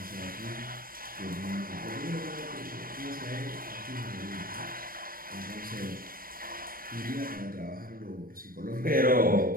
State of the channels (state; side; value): late; left; 0.42 ms